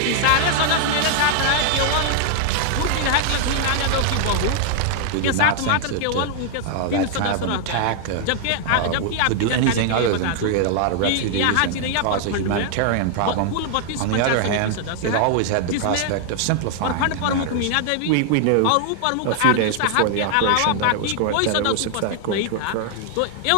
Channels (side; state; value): both; different; correlation 0.00